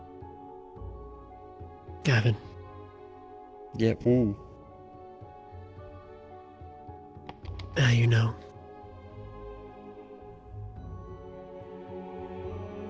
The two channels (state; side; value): identical; both; correlation 1.00